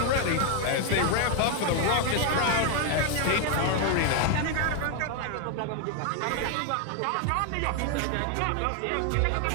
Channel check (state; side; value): different; both; correlation 0.01